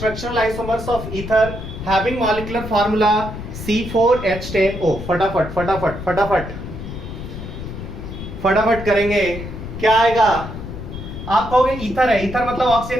isomers of ether having molecular formula C4H10O। फटाफट फटाफट फटाफट फटाफट करेंगे, क्या आएगा? आप कहोगे ईथर है, ईथर मतलब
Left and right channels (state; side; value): noise; left; rumble, 9 dB below the sound